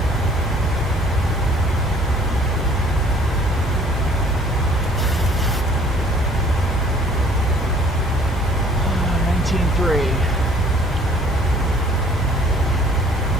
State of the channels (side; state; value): both; normal; correlation 0.55